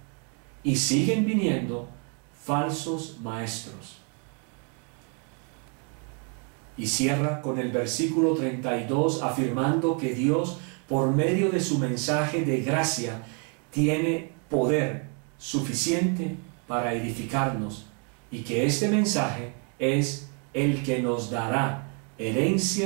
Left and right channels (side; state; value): left; quieter; 38.7 dB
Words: y siguen viniendo falsos maestros. Y cierra con el versículo 32 afirmando que Dios, por medio de su mensaje de gracia, tiene poder suficiente para edificarnos, y que este mensaje es el que nos dará